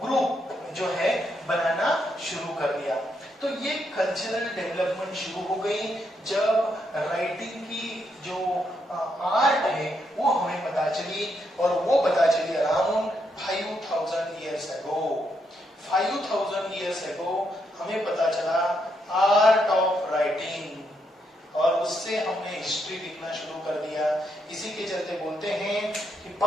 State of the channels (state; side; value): normal; both; correlation 0.78